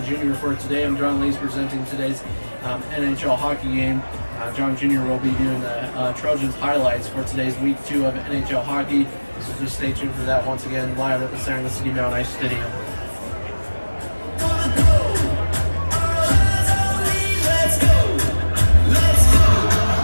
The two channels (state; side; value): inverted; both; correlation -1.00